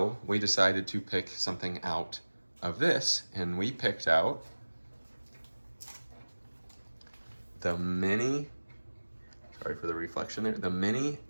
we decided to pick something out of this, and we picked out the mini, sorry for the reflection there, the mini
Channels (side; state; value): both; inverted; correlation -1.00